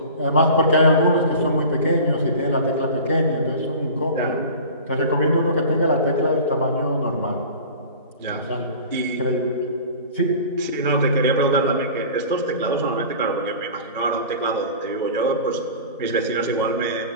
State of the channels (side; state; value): both; inverted; correlation -0.38